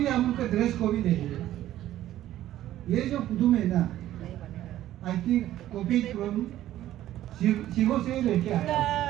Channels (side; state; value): left; quieter; 13.4 dB